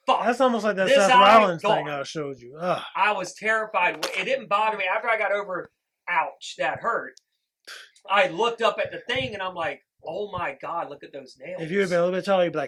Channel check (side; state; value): both; identical; correlation 1.00